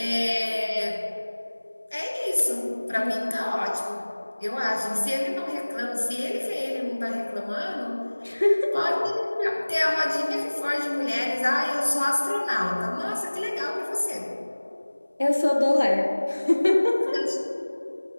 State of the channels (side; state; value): both; inverted; correlation -1.00